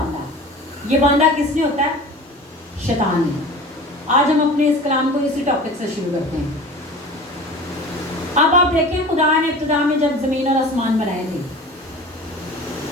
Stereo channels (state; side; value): normal; both; correlation 0.38